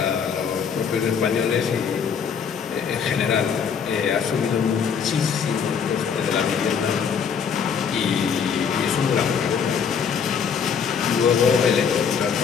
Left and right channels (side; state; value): right; quieter; 6.8 dB